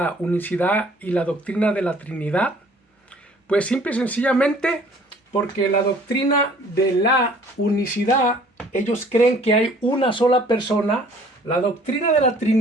unicidad y la doctrina de la Trinidad? Pues simple y sencillamente porque la doctrina de la unicidad, ellos creen que hay una sola persona. La doctrina de la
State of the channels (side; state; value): both; normal; correlation 0.54